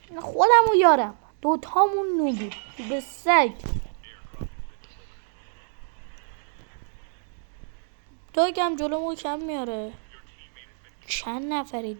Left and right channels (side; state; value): left; silent; digital silence